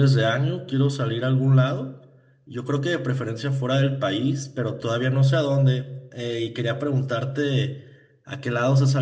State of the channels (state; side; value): identical; both; correlation 1.00